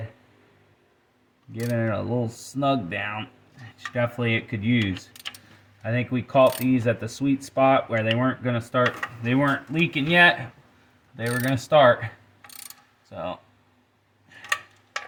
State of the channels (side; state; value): both; identical; correlation 1.00